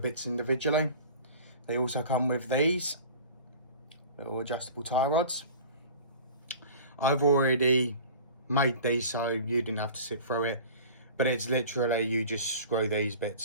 individually. They also come with these little adjustable tie rods. I've already made these so you didn't have to sit through it, but it's literally you just screw these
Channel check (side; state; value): both; inverted; correlation -0.41